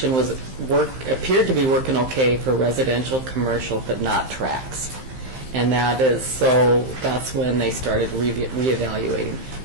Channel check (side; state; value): left; late; 15 ms